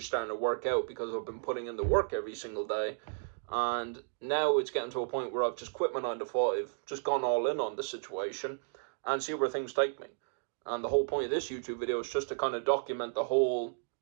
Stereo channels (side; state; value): left; silent; digital silence